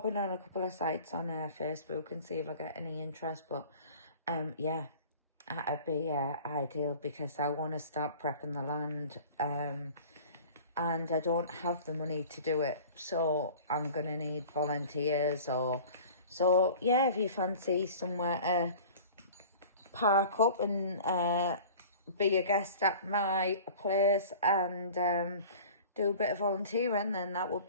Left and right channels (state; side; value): inverted; both; correlation -0.42